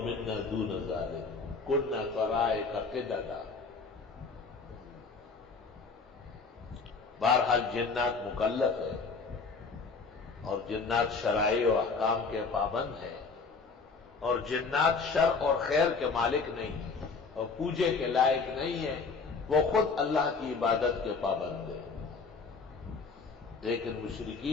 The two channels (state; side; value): quieter; right; 4.5 dB